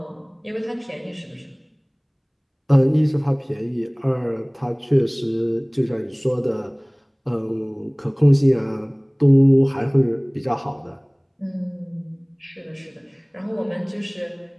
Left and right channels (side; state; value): both; identical; correlation 1.00